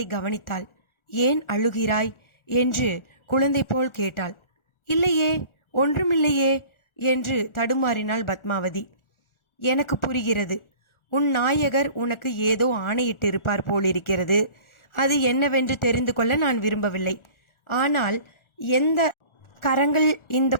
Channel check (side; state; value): right; late; 1.4 ms